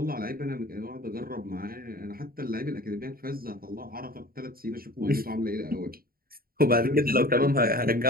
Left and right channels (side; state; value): left; late; 0.43 ms